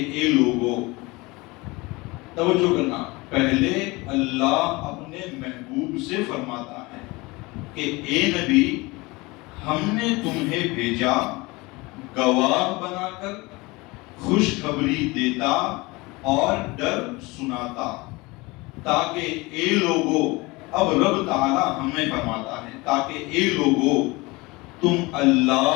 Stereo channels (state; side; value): quieter; right; 23.5 dB